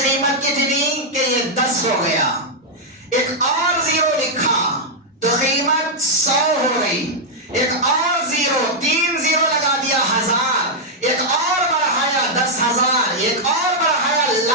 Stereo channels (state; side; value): normal; both; correlation -0.04